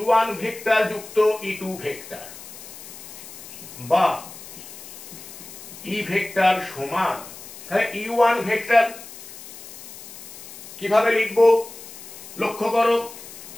ভেক্টর যুক্ত ই2 ভেক্টর বা ই ভেক্টর সমান, তাহলে ই1 ভেক্টর কিভাবে লিখবো? লক্ষ্য করো,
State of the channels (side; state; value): left; noise; hiss, 15 dB below the sound